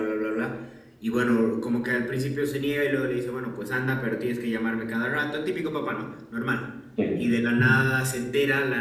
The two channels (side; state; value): both; identical; correlation 1.00